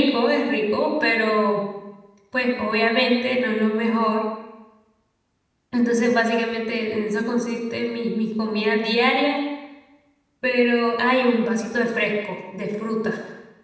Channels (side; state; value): both; identical; correlation 1.00